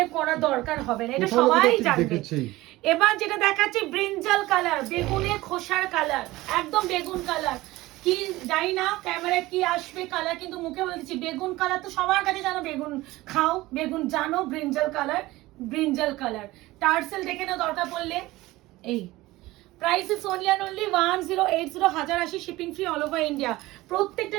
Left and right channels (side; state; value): left; quieter; 18.7 dB